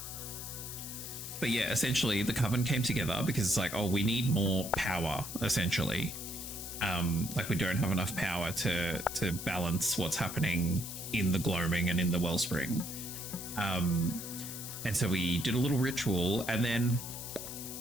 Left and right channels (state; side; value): noise; left; hiss, 8 dB below the sound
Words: But yeah, essentially the Coven came together because it's like, oh, we need more power, essentially. Like we don't have enough power to balance what's happening in the gloaming and in the wellspring. And so we did a little ritual, and then